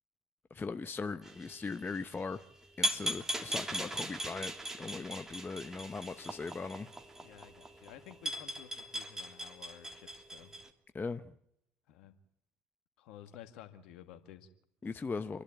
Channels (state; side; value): normal; both; correlation 0.77